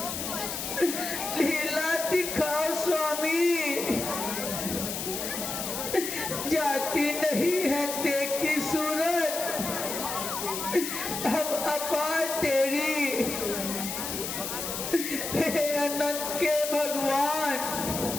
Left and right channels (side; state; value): left; noise; hiss, 4 dB below the sound